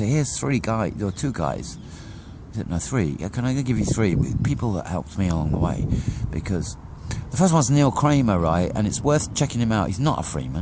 here's two guys. No, three. Can I give you three people that helped me along the way? Because the first one's Neil Kramer, right? And it's worth checking him out. He's not a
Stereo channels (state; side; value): identical; both; correlation 1.00